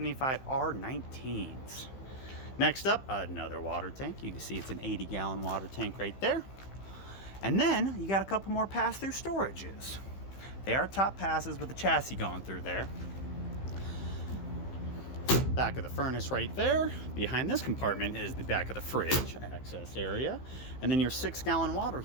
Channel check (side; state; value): right; late; 15 ms